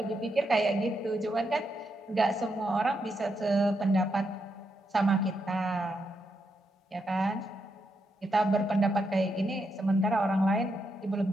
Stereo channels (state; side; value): normal; both; correlation 0.82